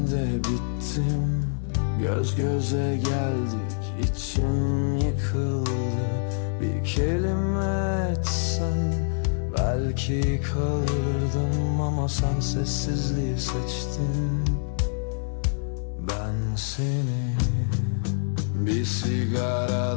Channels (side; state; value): right; silent; digital silence